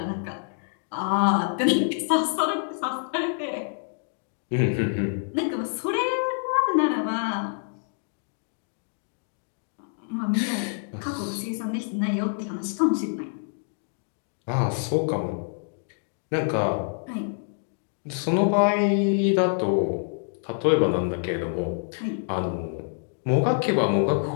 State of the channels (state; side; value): silent; right; digital silence